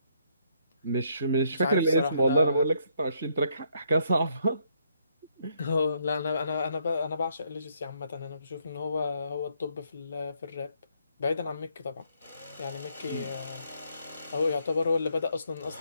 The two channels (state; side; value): inverted; both; correlation -0.71